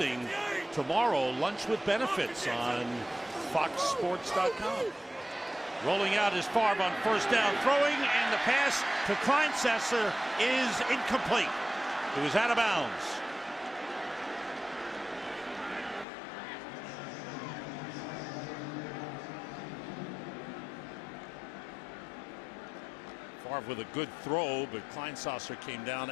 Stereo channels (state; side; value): drops out; right; at 16.1 s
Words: tomorrow Lunch with Benefits on FoxSports.com. Rolling out is Favre on 1st down, throwing, and the pass to Kleinsesser is incomplete. It was out of bounds. Favre with a good throw, but Kleinsesser came down